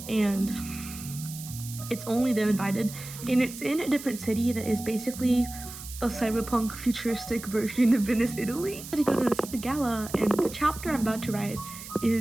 and it's only them invited, and it's in a different city that is basically a cyberpunk futuristic version of Venice, Italy. I had to go to this gala, and the chapter I'm about to write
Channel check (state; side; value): noise; right; hiss, 13 dB below the sound